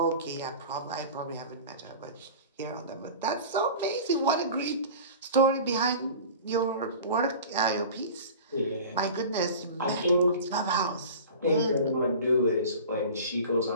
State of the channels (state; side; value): inverted; both; correlation -0.38